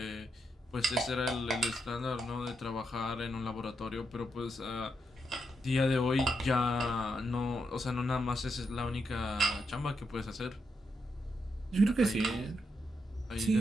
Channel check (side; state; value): both; normal; correlation 0.82